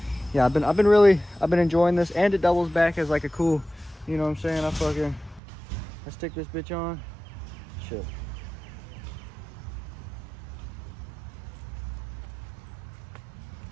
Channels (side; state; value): left; drops out; at 5.4 s